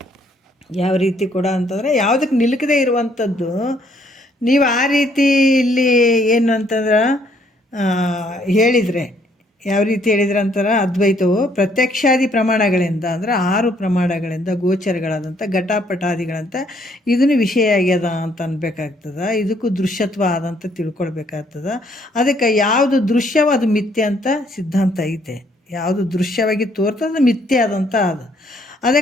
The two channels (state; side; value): normal; both; correlation 0.67